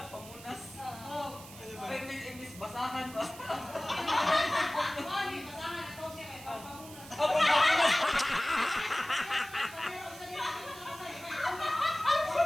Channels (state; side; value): noise; right; hiss, 17 dB below the sound